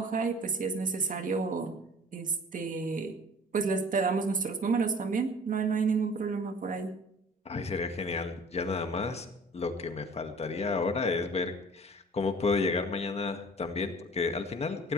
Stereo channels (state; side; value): normal; both; correlation 0.47